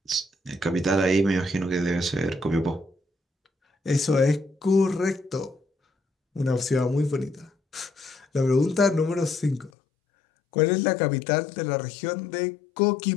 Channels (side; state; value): right; drops out; at 9.7 s